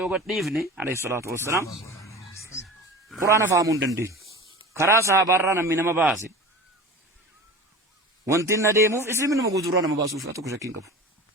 gadifne alayhi salatu wassalam قرآن فهمون دندي كرا صحابارنا من ما باسي وانتنا ديمو اسلم من مغودرانا ما باسو فاتو كشكين كفو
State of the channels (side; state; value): both; normal; correlation 0.35